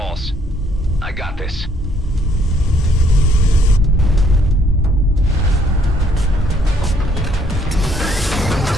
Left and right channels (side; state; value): both; normal; correlation 0.66